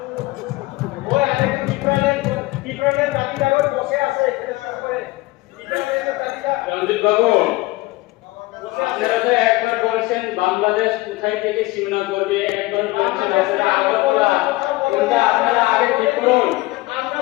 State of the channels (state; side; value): quieter; right; 20.3 dB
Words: ওই আরেকটা পিপ্রনের দাবিটা করে বসে আছে এখানে করে পিপ্রনের দাবিটা। রঞ্জিত বাবু, আপনারা তো একবার বলছেন বাংলাদেশ কোথায় থেকে সীমানা করবে, একবার বলছেন আপনারা আগরতলা, কোনটা আপনারা আগে ঠিক করুন।